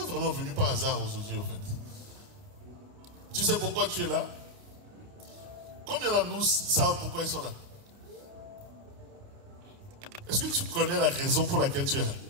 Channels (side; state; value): left; late; 29 ms